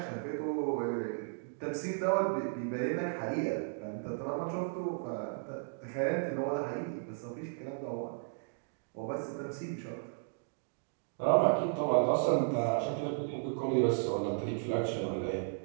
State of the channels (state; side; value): silent; left; digital silence